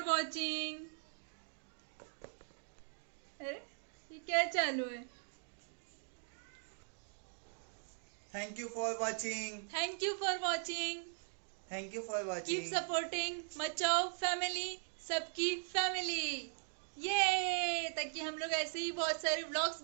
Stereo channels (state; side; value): silent; left; digital silence